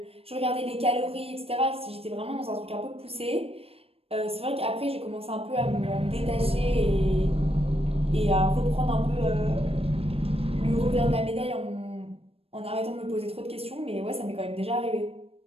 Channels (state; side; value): late; left; 0.28 ms